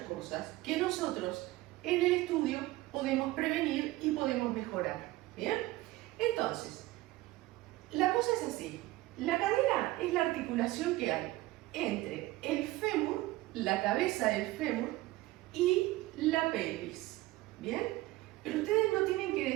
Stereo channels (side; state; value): left; quieter; 18.3 dB